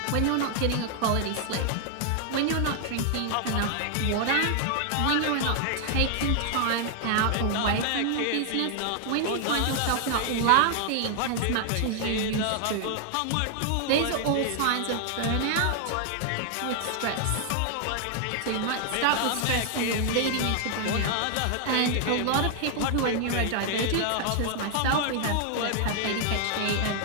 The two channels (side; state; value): both; different; correlation 0.00